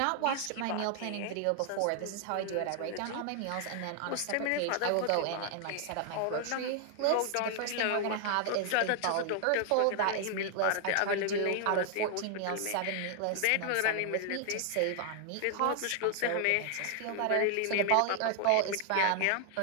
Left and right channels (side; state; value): both; different; correlation 0.00